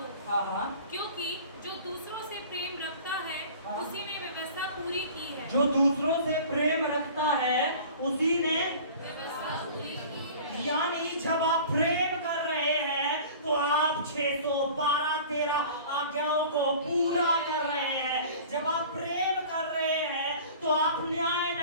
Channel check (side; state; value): both; inverted; correlation -0.43